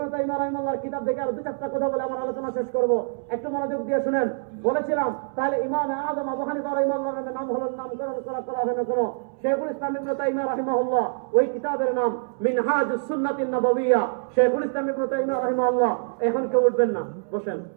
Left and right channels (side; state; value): left; silent; 62 dB below the other